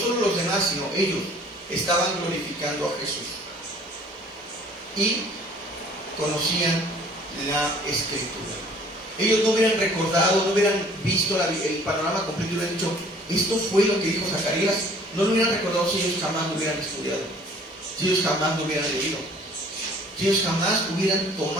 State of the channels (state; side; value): normal; both; correlation 0.54